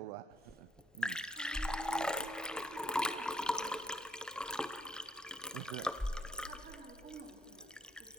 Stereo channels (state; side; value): normal; both; correlation 0.70